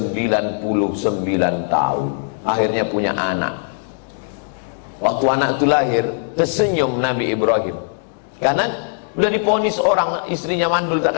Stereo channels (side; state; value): right; silent; digital silence